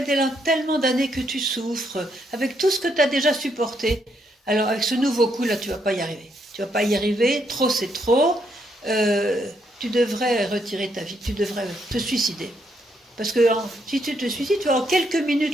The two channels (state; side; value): normal; both; correlation 0.76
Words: tellement d'années que tu souffres, avec tout ce que tu as déjà supporté. Alors avec ce nouveau coup, là, tu ne vas pas y arriver. Tu ne vas pas y arriver, trop c'est trop. Tu devrais retirer ta vie, tu devrais te suicider. Parce que si tu te suicides, tu vois, en quelques